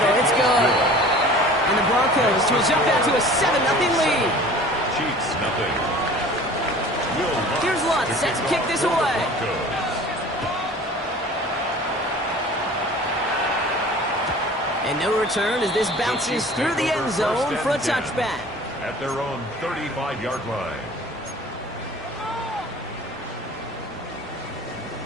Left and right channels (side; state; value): both; normal; correlation 0.44